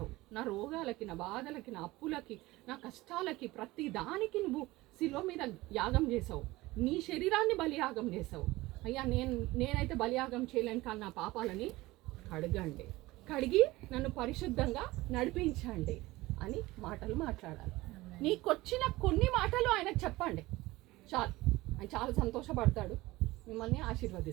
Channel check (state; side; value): quieter; left; 19.4 dB